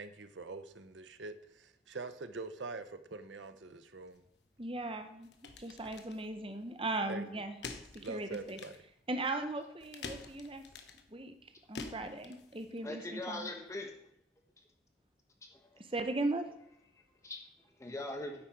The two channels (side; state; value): both; normal; correlation 0.39